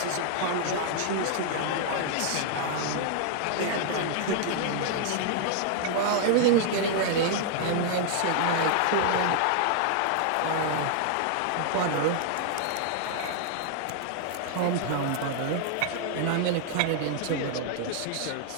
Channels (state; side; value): different; both; correlation -0.01